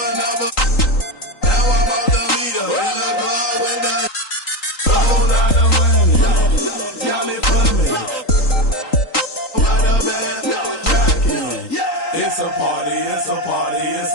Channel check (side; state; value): right; late; 3.8 ms